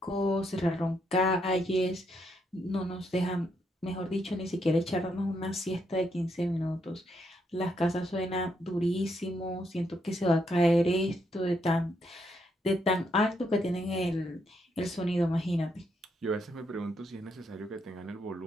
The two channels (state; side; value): normal; both; correlation 0.77